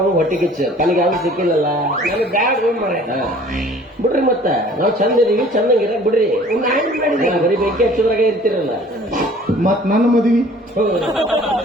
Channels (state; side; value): normal; both; correlation 0.51